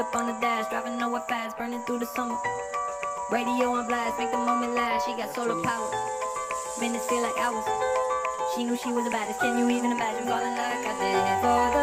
on the dash, driving nowhere fast, burning through the summer. Radio on blast, make the moment last. She got solar power, minutes feel like hours. She knew she was the baddest. Can you even imagine falling like I did for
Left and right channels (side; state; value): both; identical; correlation 1.00